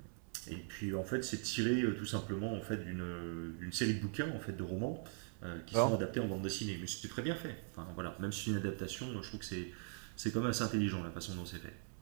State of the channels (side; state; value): left; silent; 50 dB below the other